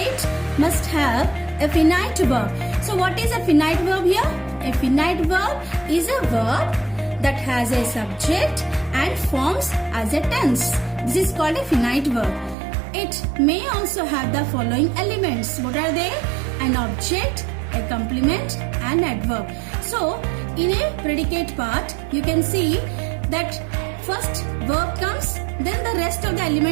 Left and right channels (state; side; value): drops out; left; at 12.6 s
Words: must have a finite verb. So, what is a finite verb here? A finite verb is a verb that has a subject and forms as a tense. This is called a finite verb. It may also have the following elements. What are they? An object, a complement, and adverb. So, in a predicate part, you can see that first verb comes, then the rest of the